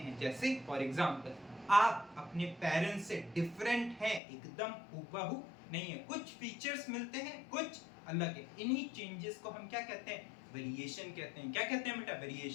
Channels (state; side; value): drops out; right; at 4.2 s